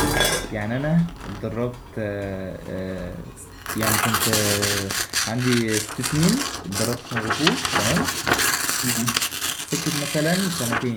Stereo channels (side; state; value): both; identical; correlation 1.00